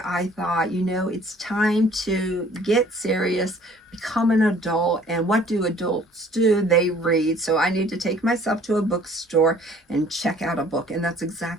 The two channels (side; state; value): both; normal; correlation 0.54